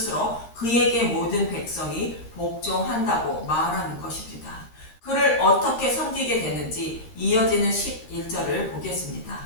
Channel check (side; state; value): right; late; 13 ms